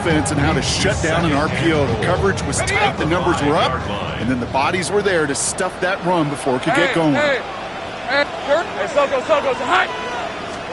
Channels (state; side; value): identical; both; correlation 1.00